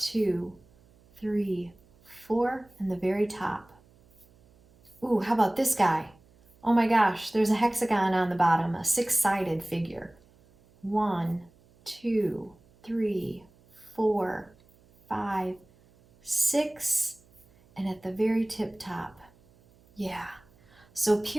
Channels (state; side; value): noise; right; hum, 30 dB below the sound